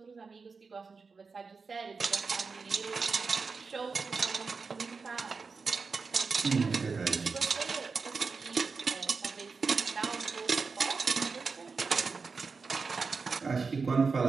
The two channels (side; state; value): left; quieter; 4.7 dB